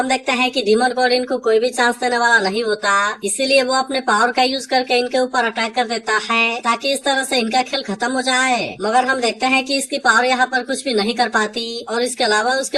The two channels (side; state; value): both; identical; correlation 1.00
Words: देखते हैं कि डीमन गॉड इनको कोई भी चांस देने वाला नहीं होता, इसीलिए वो अपने पावर का यूज करके इनके ऊपर अटैक कर देता है ताकि इस तरह से इनका खेल खत्म हो जाए। मगर हम देखते हैं कि इसकी पावर यहाँ पर कुछ भी नहीं कर पाती और इसके अलावा